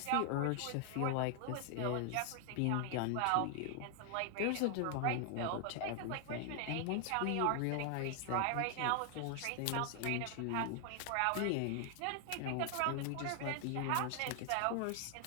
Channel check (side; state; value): both; different; correlation 0.00